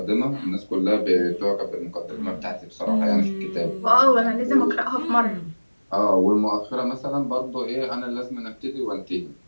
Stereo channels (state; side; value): inverted; both; correlation -1.00